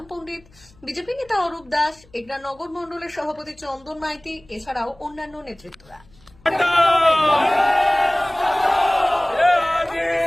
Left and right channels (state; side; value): noise; left; hum, 28 dB below the sound